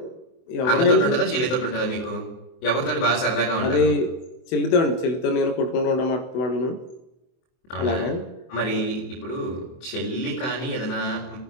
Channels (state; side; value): late; right; 24 ms